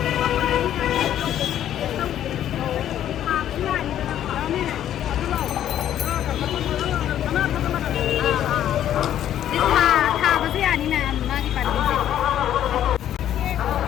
था बसे यानी ना मागी पार्टी से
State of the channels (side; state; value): right; quieter; 11.1 dB